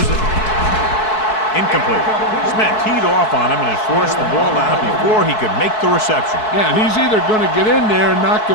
it. Incomplete. Smith teed off on him and has forced the ball out before he could make the reception. Yeah, and he's either going to get in there and knock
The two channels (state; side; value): late; right; 4.6 ms